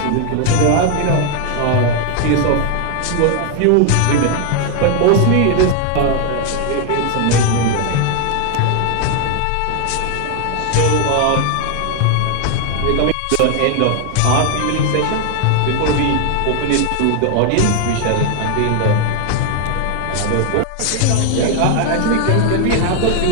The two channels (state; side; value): different; both; correlation 0.00